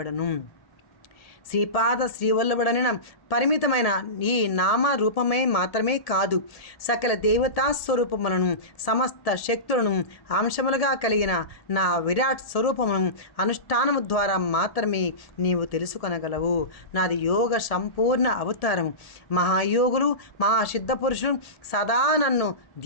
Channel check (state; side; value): late; right; 1.7 ms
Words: శ్రీపాద శ్రీవల్లభుడనిన పరిమితమైన ఈ నామ రూపమే మాత్రమే కాదు, సకల దేవతా స్వరూపములను సమస్త శక్తులను అంశములుగా కలిగిన నా విరాట్ స్వరూపమును అనుష్ఠానము ద్వారా మాత్రమే నీవు తెలుసుకొనగలవు. నాది యోగ సంపూర్ణ అవతారం. మహాయోగులు మహాసిద్ధ పురుషులు సదా నన్ను